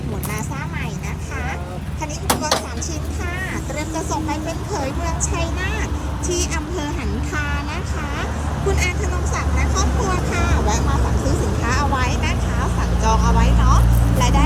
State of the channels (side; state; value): both; identical; correlation 1.00